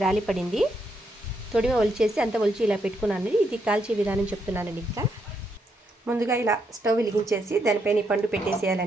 రాలి పడింది. తొడిమ ఒలిచేసి అంత ఒలిచి ఇలా పెట్టుకున్నానండి. ఇది కాల్చే విధానం చెప్తున్నానండి. ఇంకా ముందుగా ఇలా స్టవ్ వెలిగించేసి దానిపైన ఈ పండు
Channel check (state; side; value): normal; both; correlation 0.78